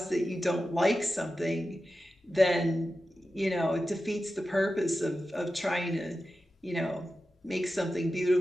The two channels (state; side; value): normal; both; correlation 0.92